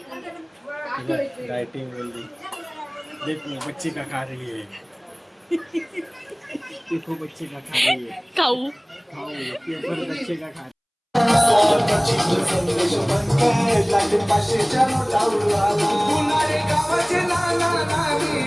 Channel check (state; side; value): identical; both; correlation 1.00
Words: डाइटिंग बोल रही. देखो बच्चे का खा रही है. देखो बच्चे का खा रही है. खाऊ पेपर बच्चे का खा.